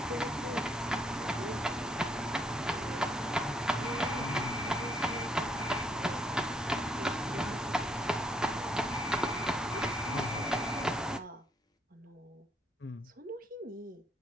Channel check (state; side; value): normal; both; correlation 0.71